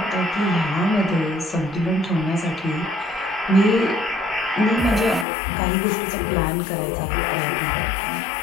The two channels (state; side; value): drops out; right; at 5.2 s